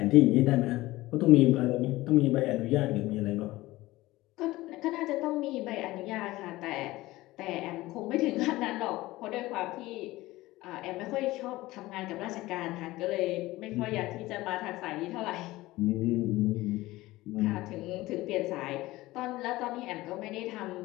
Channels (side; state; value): right; quieter; 18.4 dB